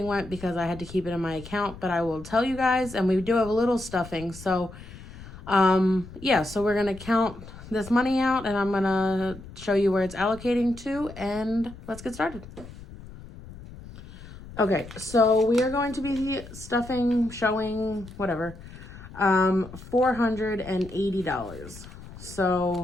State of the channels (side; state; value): left; noise; rumble, 16 dB below the sound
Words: went because I had to keep it in my account, but I will tell you guys, and we do have a little stuffing, so yeah, so we're gonna count this money out and I'm gonna show you where it's allocating to, and let's get started. Okay, so we are going to be stuffing, showing, whatever, $480.